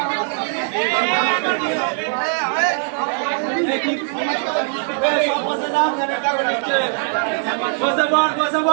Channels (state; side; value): silent; left; 56 dB below the other